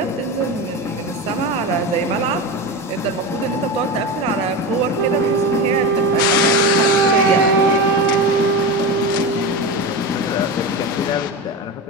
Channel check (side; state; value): both; normal; correlation 0.22